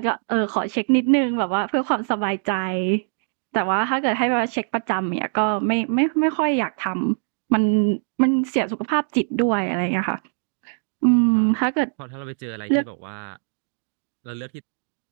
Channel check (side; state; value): left; silent; digital silence